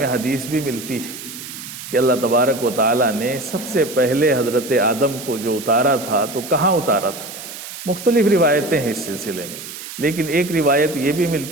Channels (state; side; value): noise; right; hiss, 11 dB below the sound